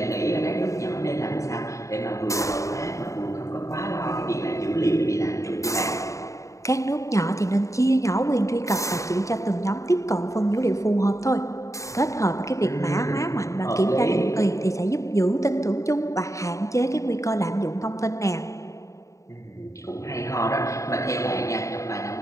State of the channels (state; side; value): late; right; 0.15 ms